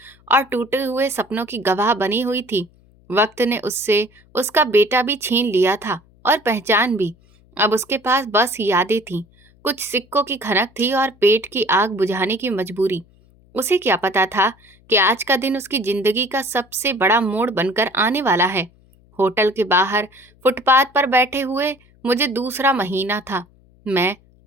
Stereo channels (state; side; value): noise; left; hum, 30 dB below the sound